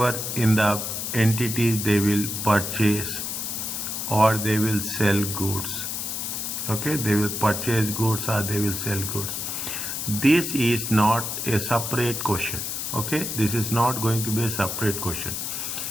in the entities they will purchase or they will sell goods. Okay, they will purchase goods or they will sell goods. This is not a separate question. Okay, this is not going to be a separate question.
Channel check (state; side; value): noise; left; hiss, 3 dB below the sound